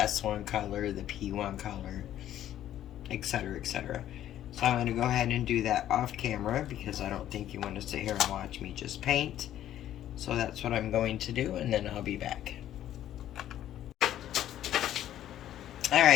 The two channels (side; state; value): right; quieter; 12.0 dB